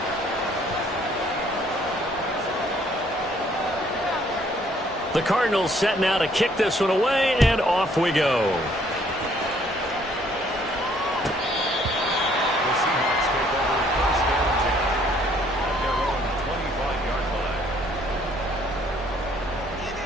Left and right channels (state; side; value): normal; both; correlation 0.63